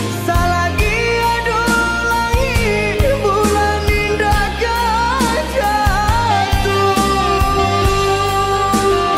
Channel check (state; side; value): identical; both; correlation 1.00